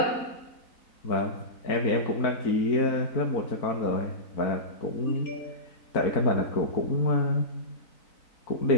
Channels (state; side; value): late; right; 4.0 ms